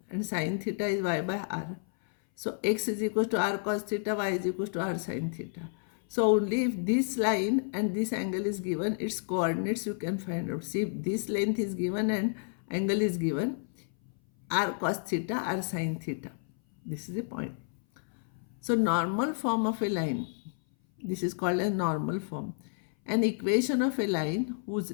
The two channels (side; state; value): right; silent; 56 dB below the other